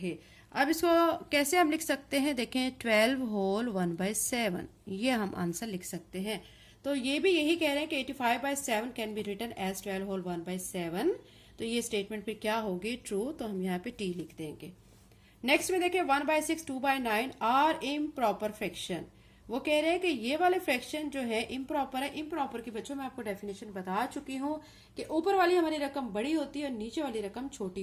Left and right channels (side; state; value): both; identical; correlation 1.00